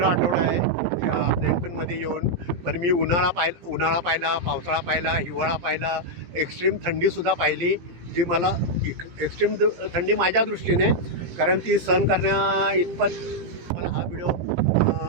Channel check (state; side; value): late; left; 17 ms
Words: आठवडा आहे प्लेनफील्डमध्ये येऊन. पण मी उन्हाळा पाहिला, पावसाळा पाहिला, हिवाळा पाहिला, एक्स्ट्रीम थंडीसुद्धा पाहिली, जी मला एक्स्ट्रीम थंडी माझ्या दृष्टीने, कारण ती सहन करण्या इतपत मला हा व्हिडिओ